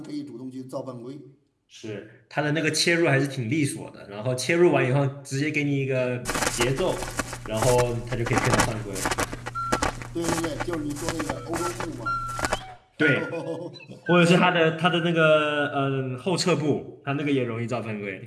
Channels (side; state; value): both; identical; correlation 1.00